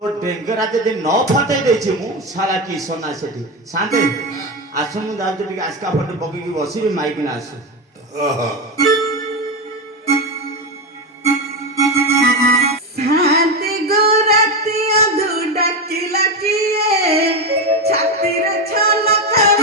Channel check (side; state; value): both; normal; correlation 0.14